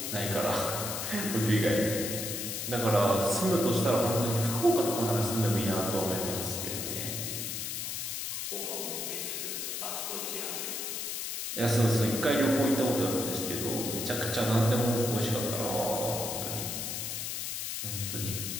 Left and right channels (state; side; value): noise; left; hiss, 4 dB below the sound